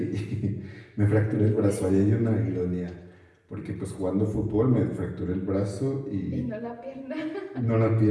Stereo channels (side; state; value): both; identical; correlation 1.00